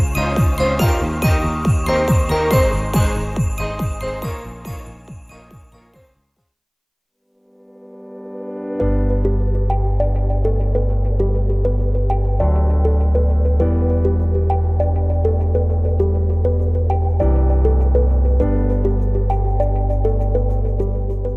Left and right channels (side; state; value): both; identical; correlation 1.00